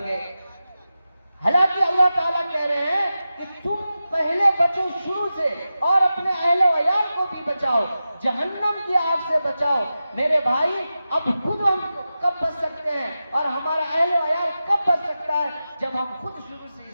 گئے. حالانکہ اللہ تعالیٰ کہہ رہے ہیں کہ تم پہلے بچو شروع سے اور اپنے اہل و عیال کو بھی بچاؤ، جہنم کی آگ سے بچاؤ. میرے بھائی اب خود ہم کب بچ سکتے ہیں اور ہمارا اہل و عیال کب بچ سکتا ہے؟ جب ہم خود شروع سے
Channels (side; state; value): both; inverted; correlation -0.93